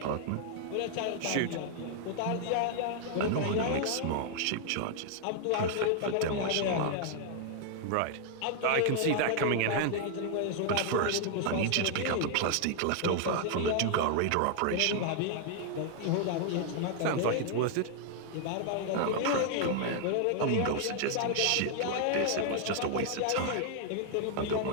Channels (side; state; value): both; different; correlation 0.00